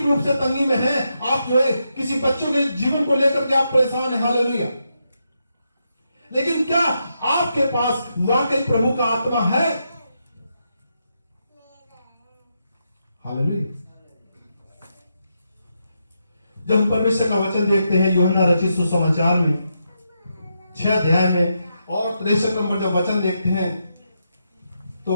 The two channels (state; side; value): inverted; both; correlation -0.83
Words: रूप से तंगी में हैं, आप जो है किसी बच्चों के जीवन को लेकर के आप परेशान हैं, हालेलुया। लेकिन क्या आपके पास वाकई प्रभु का आत्मा है? हालेलुया। जब हम परमेश्वर का वचन देखते हैं यूहन्ना रचित सुसमाचार में 6 अध्याय में और 63 नंबर जब वचन देखते हैं